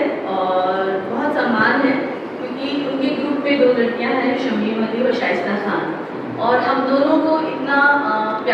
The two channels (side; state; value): both; identical; correlation 1.00